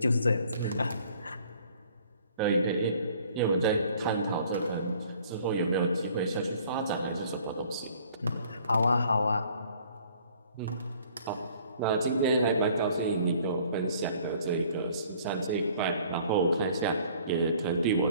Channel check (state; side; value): inverted; both; correlation -0.56